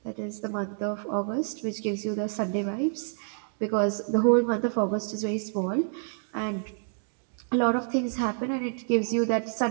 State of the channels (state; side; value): silent; left; digital silence